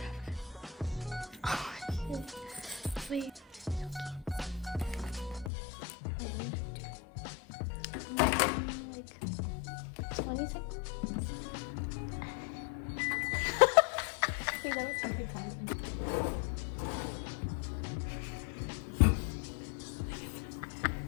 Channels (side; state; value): right; drops out; at 5.5 s